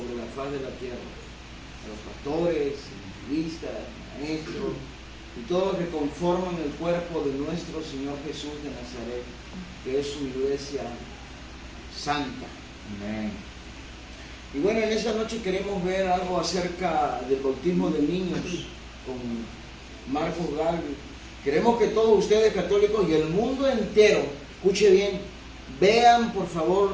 la faz de la tierra, a los pastores, evangelistas, maestros y todos los que conforman el cuerpo de nuestro Señor Jesús de Nazaret, que es su iglesia santa. Amén. Y bueno, en esta noche queremos ver algo acerca del bautismo de niños con Marcos Galvez. Queremos que todos ustedes católicos y el mundo entero, escuche bien, vean por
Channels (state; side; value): identical; both; correlation 1.00